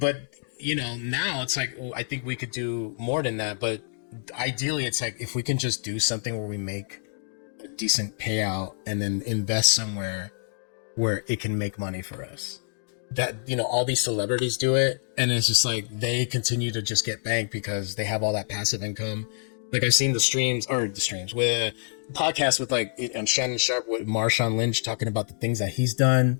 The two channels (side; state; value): right; silent; digital silence